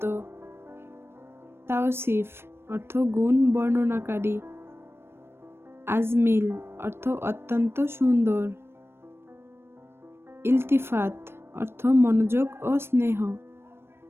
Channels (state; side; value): late; left; 0.12 ms